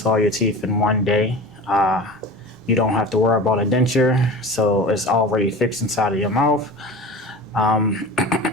all your teeth in one day. You don't have to worry about a denture, so it's already fixed inside of your mouth.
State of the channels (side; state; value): both; normal; correlation 0.34